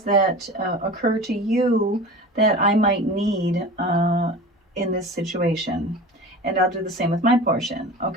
that occur to you that I might need in this situation. And I'll do the same with my portion.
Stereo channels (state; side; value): normal; both; correlation 0.35